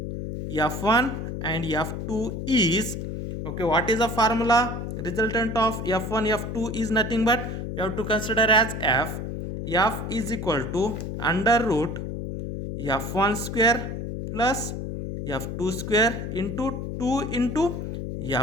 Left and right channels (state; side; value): noise; left; hum, 5 dB below the sound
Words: F1 and F2 is, okay, what is the formula? Resultant of F1 F2 is nothing but you have to consider as F is equal to under root F1 square plus F2 square into 2 into